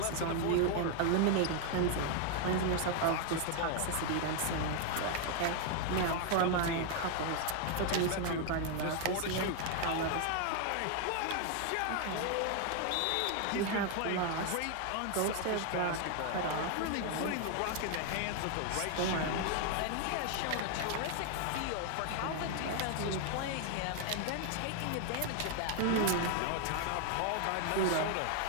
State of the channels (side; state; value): both; different; correlation 0.00